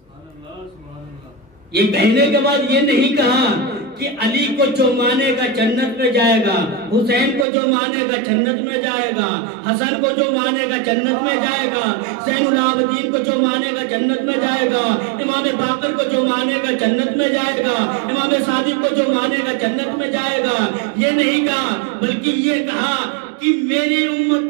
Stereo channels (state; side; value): drops out; left; at 7.5 s